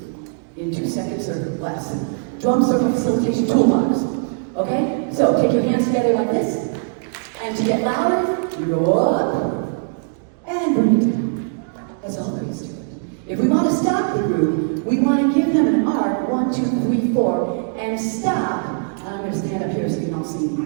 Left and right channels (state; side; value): silent; left; digital silence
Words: in 2 seconds or less. Drum circle facilitation toolbox. Okay? So take your hands together like this. And to get louder, you go up and bring it down. That's all there is to it. If we want to stop the group, we want to give them an arc, 1, 2, 3, 4, and stop. I'm going to stand up here so you can all see